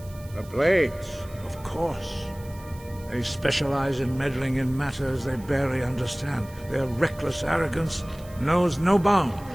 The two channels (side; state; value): right; noise; hiss, 23 dB below the sound